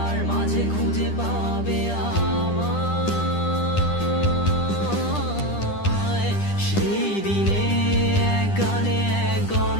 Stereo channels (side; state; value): right; late; 10 ms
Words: মাঝে খুঁজে পাবে আমায়। সেই দিনে এক গানে এক